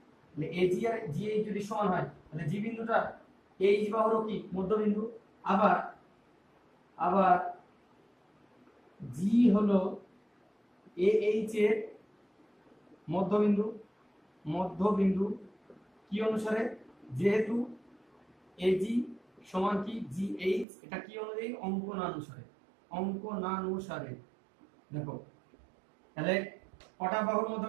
তাহলে এজি আর জিএইচ যদি সমান হয়, তাহলে জি বিন্দুটা এইচ বাহুরও কি মধ্যবিন্দু। আবার জি হলো এইচ এর মধ্যবিন্দু কি অনুসারে, যেহেতু এজি সমান কি জিএইচ, এটা কি অনুযায়ী, অঙ্কনানুসারে। দেখো তাহলে কটা বাহুর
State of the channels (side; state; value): left; drops out; at 20.7 s